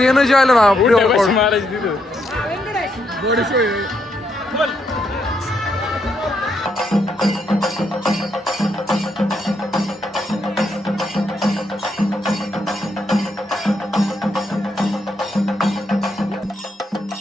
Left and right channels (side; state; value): both; normal; correlation 0.78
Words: एनर्जी आलं ना प्रिवर्कआउट मारायची तिथं.